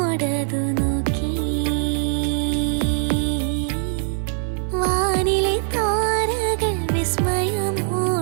നോക്കി, വാനിലെ താരകൾ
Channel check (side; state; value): left; silent; 64 dB below the other